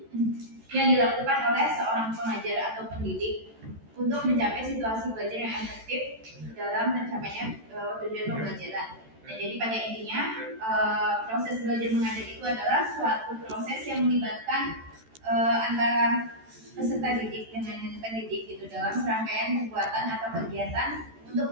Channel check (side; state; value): left; late; 13 ms